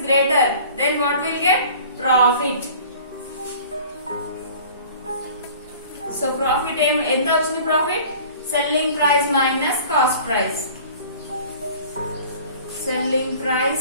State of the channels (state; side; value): inverted; both; correlation -0.46